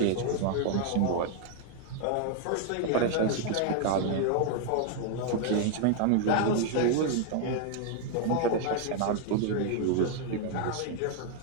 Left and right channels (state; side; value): different; both; correlation 0.00